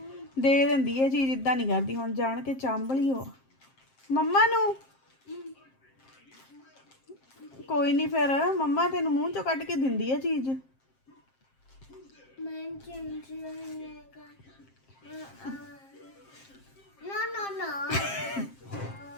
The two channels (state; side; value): late; right; 7.6 ms